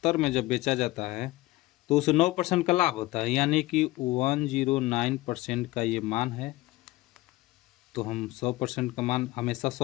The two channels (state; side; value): quieter; right; 19.0 dB